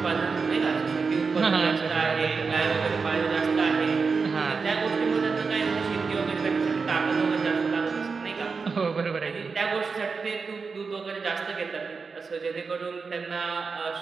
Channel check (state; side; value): quieter; left; 4.9 dB